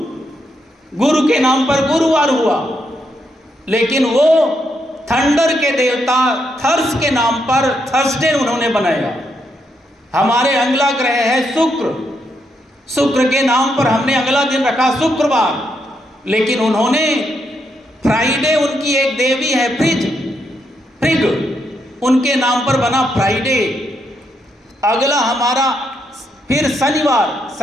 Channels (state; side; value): normal; both; correlation 0.79